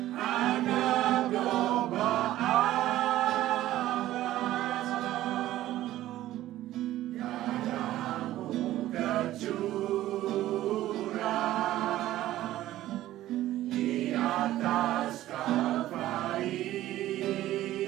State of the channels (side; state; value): left; quieter; 14.5 dB